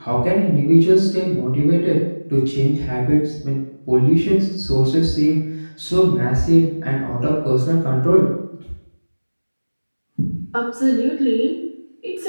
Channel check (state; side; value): inverted; both; correlation -1.00